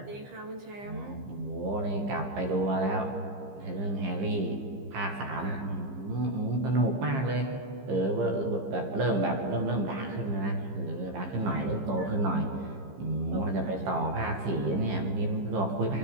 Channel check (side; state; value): left; late; 15 ms